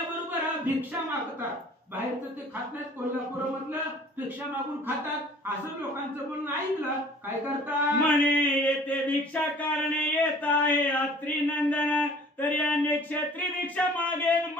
भिक्षा मागतात. बाहेरचं ते खात नाहीत, कोल्हापूरमधलं भिक्षा मागून खातात. असं लोकांचं बोलणं ऐकलं. काय करतात म्हणे येथे भिक्षा कारणे येत आहे अत्रिनंदन. तरी अन्य क्षेत्री भिक्षा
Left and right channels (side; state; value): both; normal; correlation 0.50